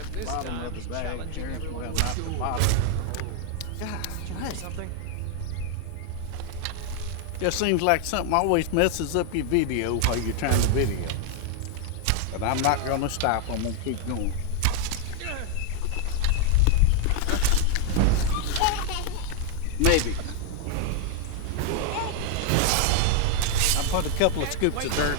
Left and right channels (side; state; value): both; different; correlation 0.00